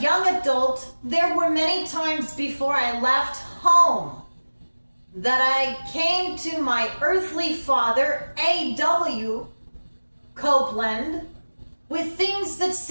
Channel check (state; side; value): inverted; both; correlation -1.00